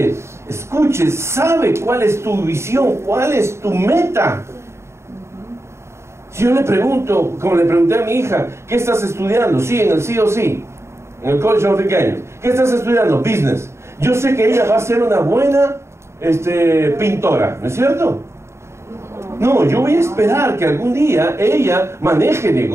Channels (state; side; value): late; left; 0.13 ms